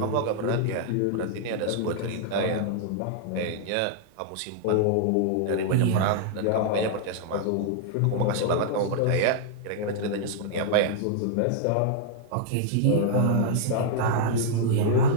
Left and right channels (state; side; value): different; both; correlation -0.01